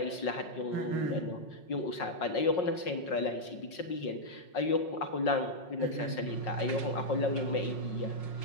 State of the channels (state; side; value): late; right; 5.5 ms